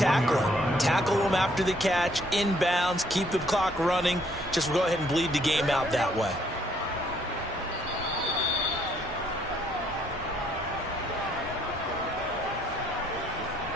Tackle them after the catch, inbounds, keep the clock running. Just go ahead and bleed the game out that way.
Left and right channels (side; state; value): both; normal; correlation 0.67